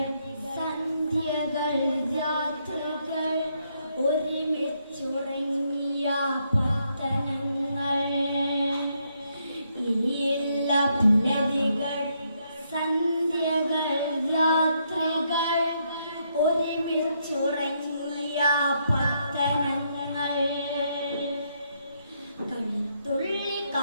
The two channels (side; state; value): both; inverted; correlation -0.76